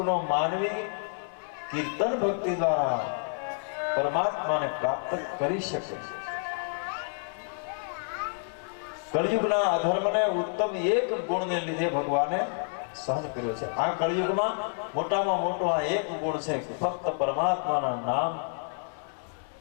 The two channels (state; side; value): silent; right; 59 dB below the other